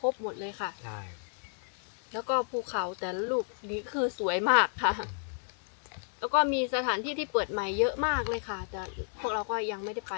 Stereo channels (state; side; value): silent; right; 57 dB below the other